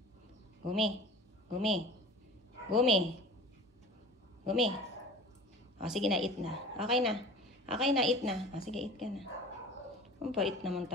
Gumi. Gumi. Gumi. Gumi. O, sige na, eat na. Okay na. Okay na, eat na. O, sige, eat ka na. Ang bait naman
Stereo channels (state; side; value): normal; both; correlation 0.40